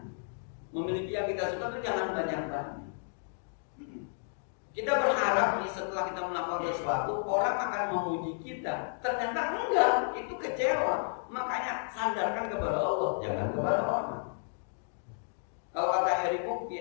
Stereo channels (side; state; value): right; silent; digital silence